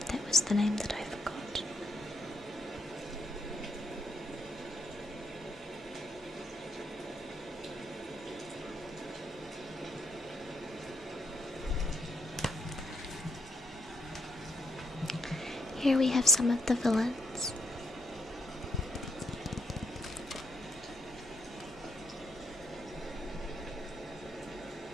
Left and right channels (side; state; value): both; normal; correlation 0.75